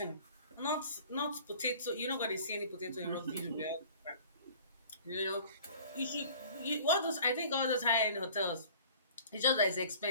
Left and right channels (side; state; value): both; inverted; correlation -0.48